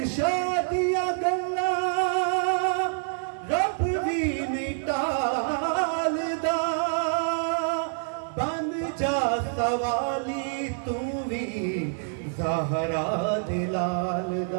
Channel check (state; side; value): silent; left; 60 dB below the other